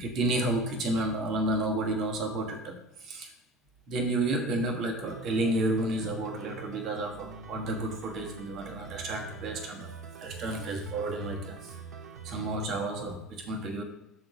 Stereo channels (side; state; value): both; normal; correlation 0.37